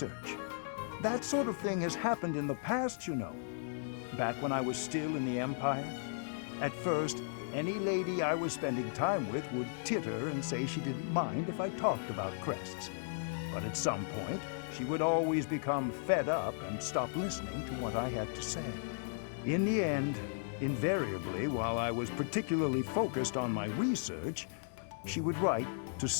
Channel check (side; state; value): right; silent; 54 dB below the other